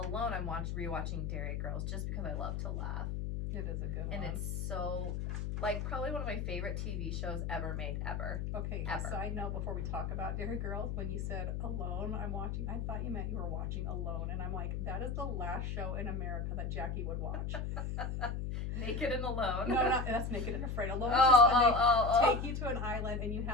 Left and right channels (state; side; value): noise; left; hum, 2 dB below the sound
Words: I'm rewatching Dairy Girls just because I love to laugh. It is a good And one. it's so, like, probably one of my favorite TV shows ever made, ever. Okay, ever. side note before we talk about Dairy Girls, when you said Alone, I'm watching, I thought you meant you were watching Alone, and I'm like, that is the last show in America that Jackie would watch. Naked and Alone. No, that's Naked and Afraid. Alone is Oh, just when they oh. take you to an island and you